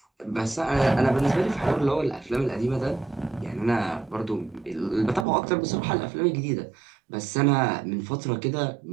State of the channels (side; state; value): left; drops out; at 5.2 s